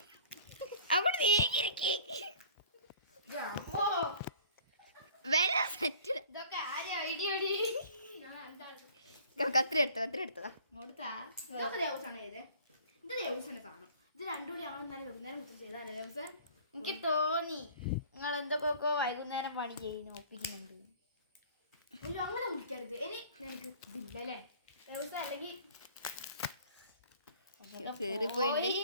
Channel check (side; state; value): both; inverted; correlation -0.49